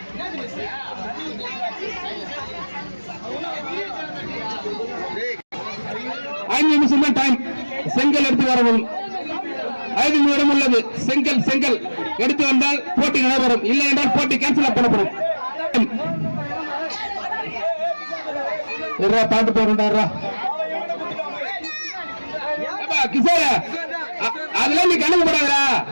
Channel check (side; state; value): both; inverted; correlation -1.00